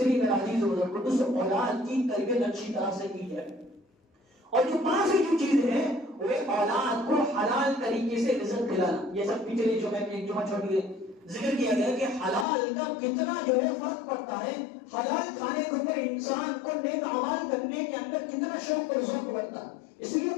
میرا عزیز دوستوں اولاد کی تربیت اچھی طرح سے کی جائے. اور جو پانچویں جو چیز ہے وہ اولاد کو حلال طریقے سے رزق دلانا. یہ سب پچھلے جو میں ایک جمعہ چھوڑ کے ذکر کیا گیا کہ حلال کا کتنا جو ہے فرق پڑتا ہے. حلال کھانے کے اوپر انسان کو نیک اعمال کرنے کے اندر کتنا شوق اور ذوق بڑھتا ہے. اس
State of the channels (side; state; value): right; drops out; at 12.5 s